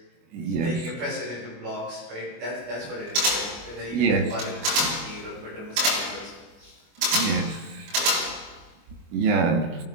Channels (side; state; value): left; late; 25 ms